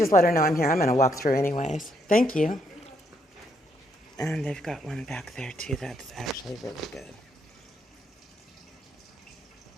let her know I'm here, I'm going to walk through anyways. Thank you. And they've got one back there too that's actually really good.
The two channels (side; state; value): both; normal; correlation 0.74